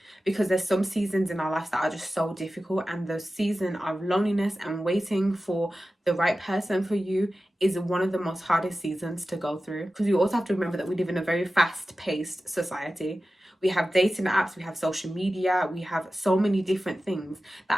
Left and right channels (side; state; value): both; normal; correlation 0.94